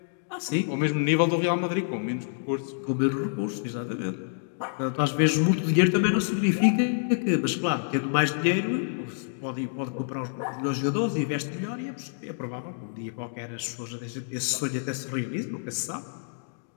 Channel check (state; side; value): silent; right; digital silence